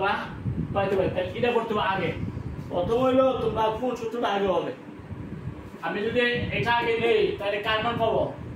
পাইতে পারি। তাহলে এটা করতে হবে আগে। প্রথম হইলো তোমরা কোন সূত্রটা আগে হবে। আমি যদি এটা আগে নেই তাহলে কার মান পাবো,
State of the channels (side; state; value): both; identical; correlation 1.00